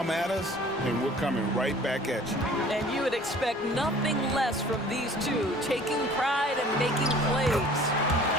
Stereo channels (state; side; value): normal; both; correlation 0.49